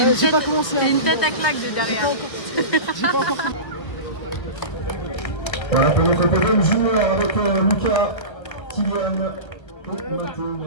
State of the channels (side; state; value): right; late; 1.4 ms